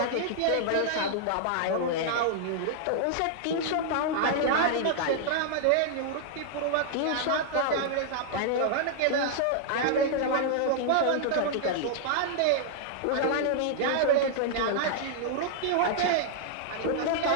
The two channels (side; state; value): both; different; correlation -0.01